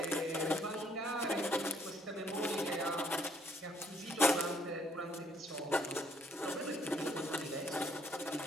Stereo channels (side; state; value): both; normal; correlation 0.67